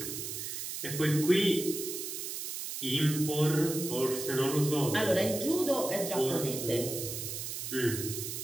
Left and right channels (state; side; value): noise; right; hiss, 5 dB below the sound